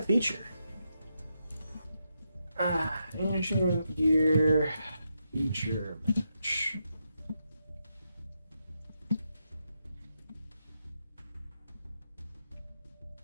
feature. Ancient Gear feature match.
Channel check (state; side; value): inverted; both; correlation -0.83